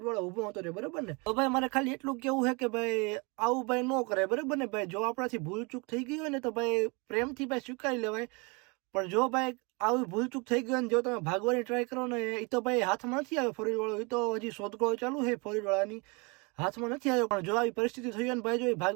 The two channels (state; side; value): quieter; left; 29.6 dB